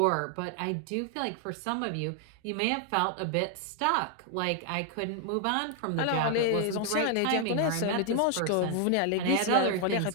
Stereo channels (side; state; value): both; different; correlation 0.00